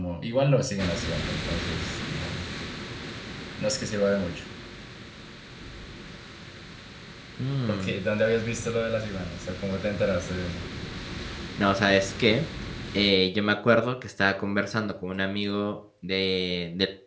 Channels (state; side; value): identical; both; correlation 1.00